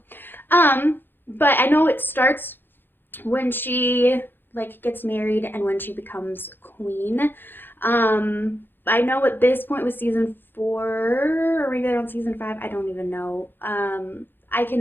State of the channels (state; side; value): late; right; 0.098 ms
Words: But I know it starts when she gets married and when she becomes queen. I know at this point with season 4 or maybe they're on season 5, I don't even know. I